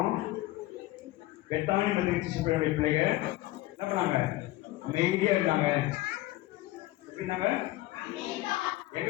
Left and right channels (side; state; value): right; quieter; 17.6 dB